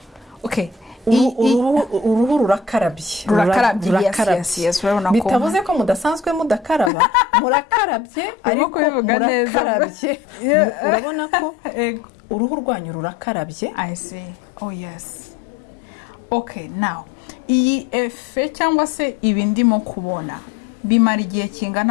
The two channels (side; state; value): right; drops out; at 6.9 s